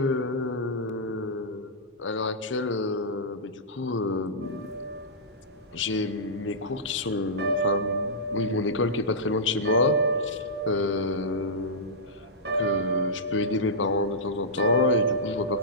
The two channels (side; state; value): both; normal; correlation -0.13